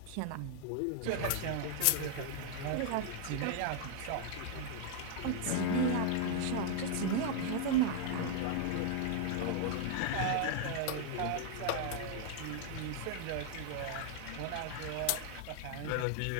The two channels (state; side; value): different; both; correlation 0.00